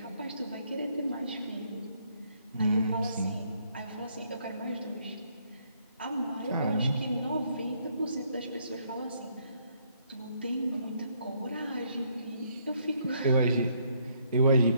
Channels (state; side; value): inverted; both; correlation -0.70